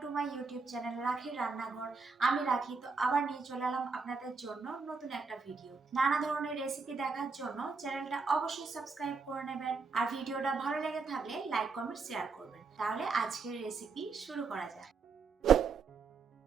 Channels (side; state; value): left; quieter; 4.7 dB